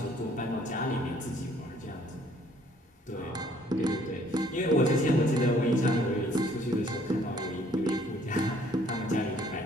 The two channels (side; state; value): both; normal; correlation 0.61